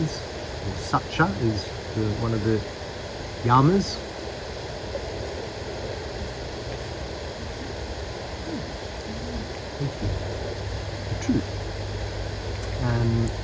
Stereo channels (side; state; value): both; identical; correlation 1.00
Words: Satcha is one of the yamas. Thank you. The truth.